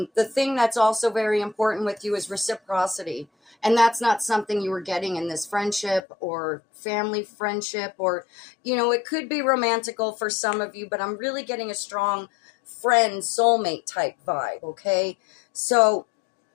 thing that's also very important with you is reciprocity. And that's not something you were getting in this friendship or family friendship, or, it could be romantical for some of you, but I'm really getting a strong friend, soulmate type vibe. Okay. So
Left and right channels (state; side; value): drops out; right; at 6.0 s